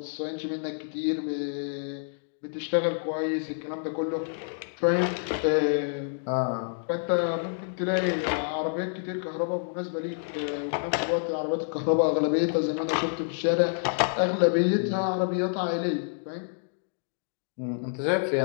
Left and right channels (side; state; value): right; silent; digital silence